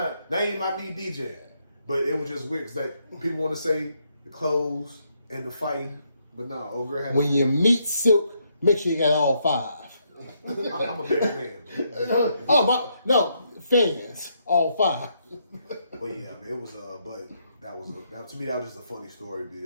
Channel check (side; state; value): both; inverted; correlation -0.76